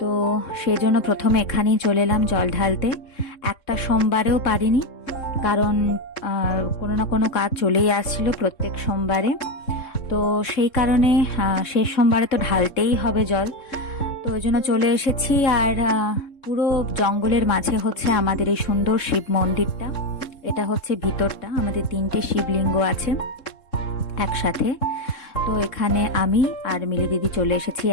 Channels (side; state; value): right; late; 3.7 ms